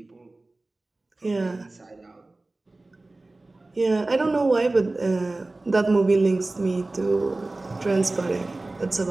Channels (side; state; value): left; quieter; 3.0 dB